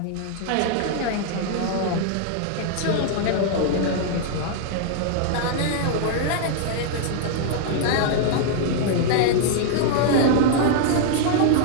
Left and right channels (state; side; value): different; both; correlation -0.01